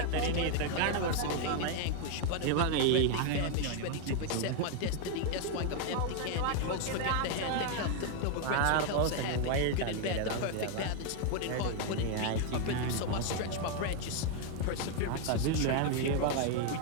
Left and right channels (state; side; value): different; both; correlation 0.01